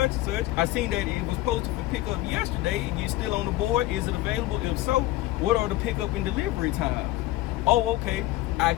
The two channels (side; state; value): right; quieter; 17.1 dB